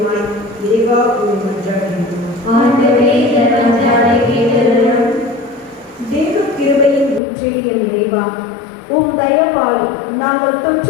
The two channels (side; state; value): right; drops out; at 7.2 s